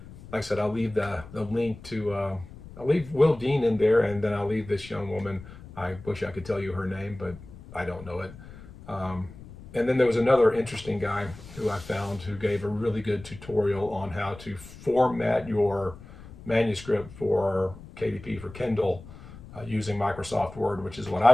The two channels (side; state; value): left; noise; rumble, 17 dB below the sound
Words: Like I said, I'll leave the link to, I'll leave Will Dean in there, and then I'll leave this young woman. I wish I could tell you her name, but I don't know it. And then there was another interesting guy who I found who gave a really good tutorial on how to format your manuscript for KDP, for Kindle, using Microsoft Word, which is what